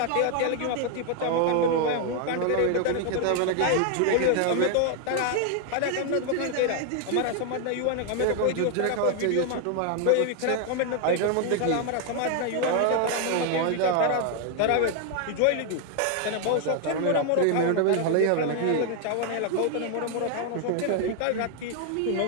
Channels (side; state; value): both; different; correlation 0.00